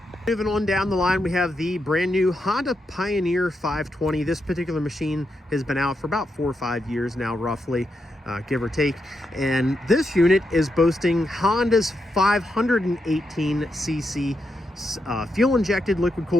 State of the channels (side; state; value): both; normal; correlation 0.84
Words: Moving on down the line, we have the brand new Honda Pioneer 520. This particular machine has been out for about 4 or 5 years now, roughly, give or take. And this unit is boasting Honda's 518cc fuel injected, liquid